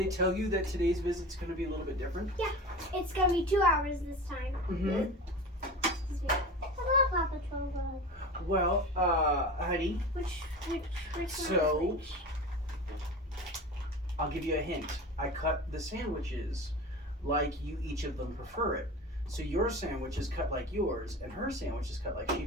tell you that today's visit's going to be a little bit different? Yeah, it's going to be 2 hours this time. Mm-hmm. Hello, Papa Troll. Well, honey. Which So, I'll give you a hint. I cut the sandwiches like each of them prefer it. So your sandwich is cut like yours, and her sandwich is cut like she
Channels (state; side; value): normal; both; correlation 0.32